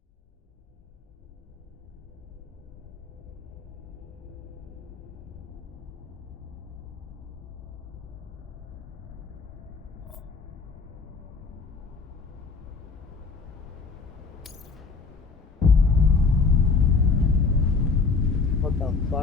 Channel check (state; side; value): quieter; right; 4.5 dB